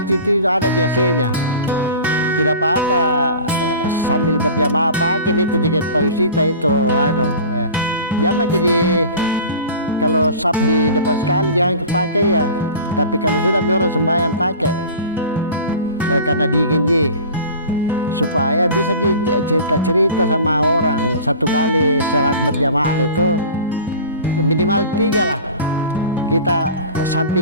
itu ada biasanya, tidak apa-apa sambil berjamaah pakai itu jaket payusita itu jamaah. Jadi kalau sab di depan sekali jangan dipakai ya, tapi kalau sudah orang sembahyang pakai karena dingin supaya bisa cerita-cerita sama orang. Satu kali salat berjamaah itu minimal 3 lah, kita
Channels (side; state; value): both; inverted; correlation -0.39